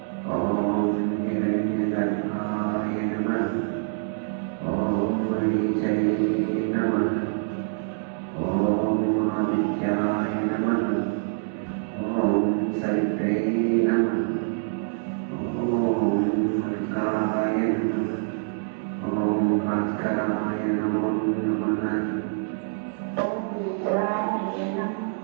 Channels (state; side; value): silent; left; digital silence